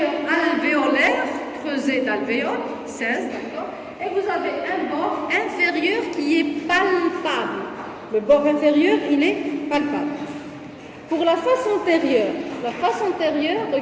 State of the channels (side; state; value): both; identical; correlation 1.00